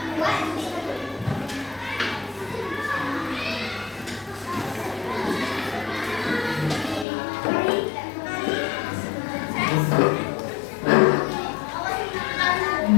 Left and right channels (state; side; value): drops out; right; at 7.1 s